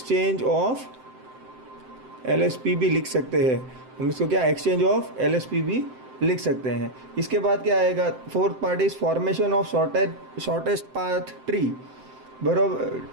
ऑफ एलएसपी भी लिख सकते हैं हम इसको, क्या एक्सचेंज ऑफ एलएसपी भी लिख सकते हैं। इसके बाद क्या आएगा, fourth part is formation of shortest path tree, बराबर।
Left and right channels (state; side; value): late; left; 7.7 ms